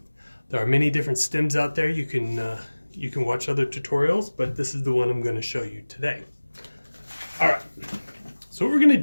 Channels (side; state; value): both; inverted; correlation -1.00